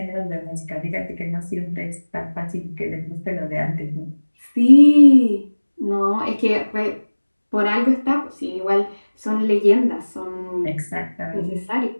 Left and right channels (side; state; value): both; inverted; correlation -1.00